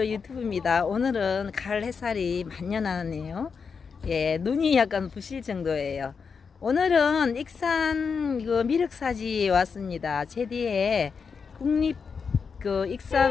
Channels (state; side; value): quieter; right; 5.7 dB